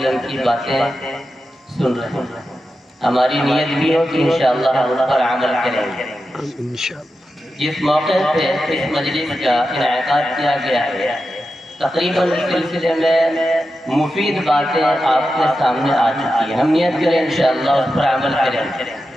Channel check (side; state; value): both; normal; correlation 0.90